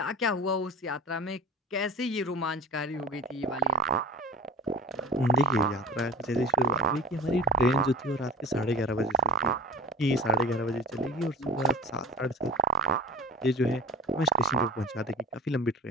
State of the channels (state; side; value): normal; both; correlation 0.35